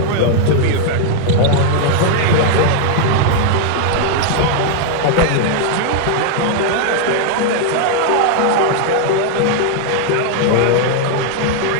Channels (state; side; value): different; both; correlation 0.00